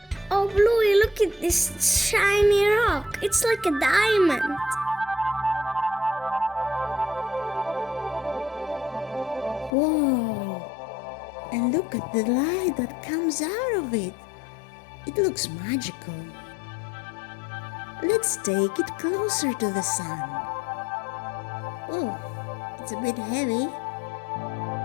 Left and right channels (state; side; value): drops out; right; at 9.8 s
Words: Oh, Bluey, look at this shiny rock. It's like a diamond. Whoa! And look at the light that comes out of it. It looks magical. Let's take it closer to the sun. Oh, it's a bit heavy.